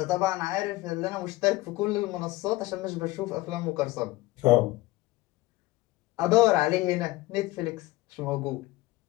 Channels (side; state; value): right; quieter; 18.7 dB